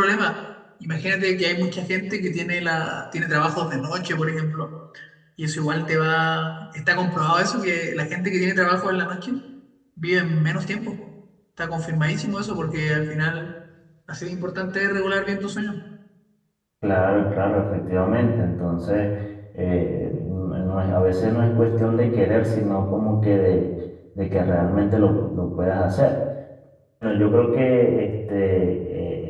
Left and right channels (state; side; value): identical; both; correlation 1.00